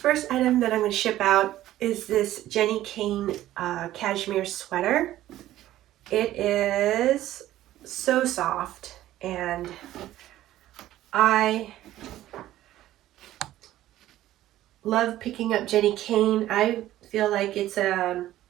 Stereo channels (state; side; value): quieter; left; 14.1 dB